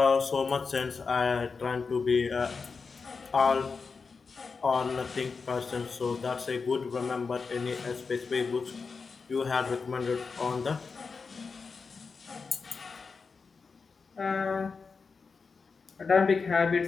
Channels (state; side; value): quieter; right; 4.9 dB